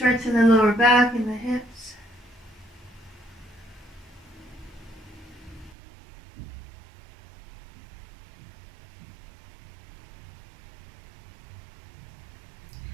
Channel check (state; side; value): drops out; left; at 5.8 s